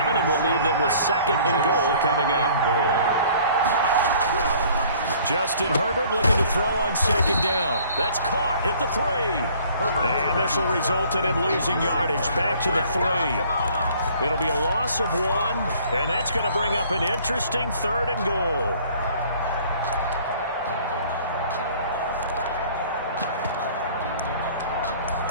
and we'll leave them with 2nd and goal coming up. Justin Herbert looking to throw on 2nd down. That's caught at the 3. And this will result in him losing yardage back to the 3. It'll be a loss of 1, and that's going to bring up an interesting 3rd and goal.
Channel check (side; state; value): both; inverted; correlation -0.55